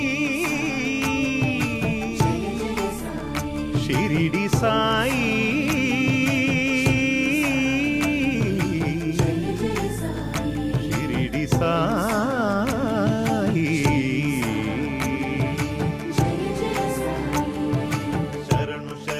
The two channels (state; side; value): identical; both; correlation 1.00